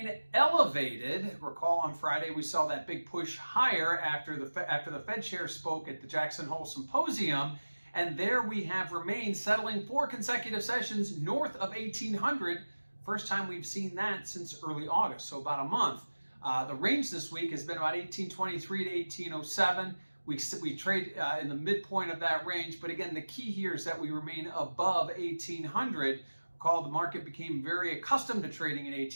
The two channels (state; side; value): inverted; both; correlation -1.00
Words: elevated. Recall on Friday we saw that big push higher after the Fed chair spoke at the Jackson Hole Symposium, and there we have remained settling 4 consecutive sessions north of 1800. First time we've seen that since early August, so about a month. The range this week has been about 1823 to 1807. We trade in the midpoint of that range, but again, the key here is that we remain above 1800. Recall, the market became very accustomed to trading in